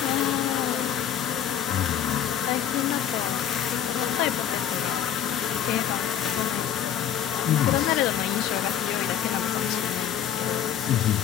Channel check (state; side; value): quieter; right; 9.8 dB